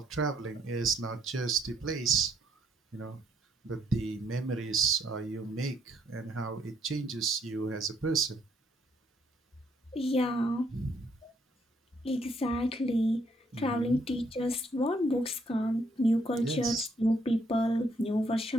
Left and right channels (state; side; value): normal; both; correlation 0.71